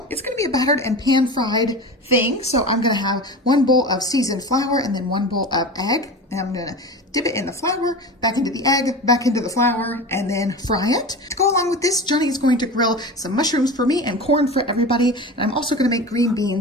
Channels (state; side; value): normal; both; correlation 0.30